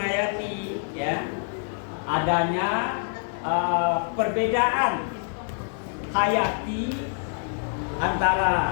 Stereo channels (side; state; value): right; silent; 61 dB below the other